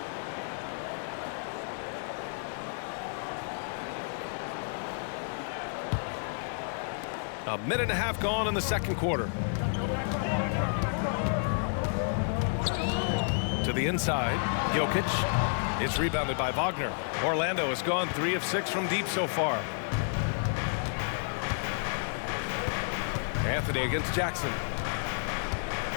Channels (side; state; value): right; silent; 57 dB below the other